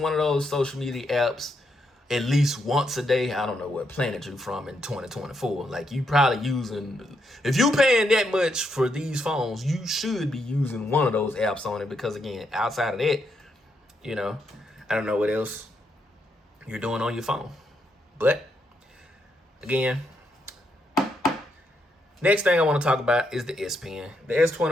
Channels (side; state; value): both; normal; correlation 0.79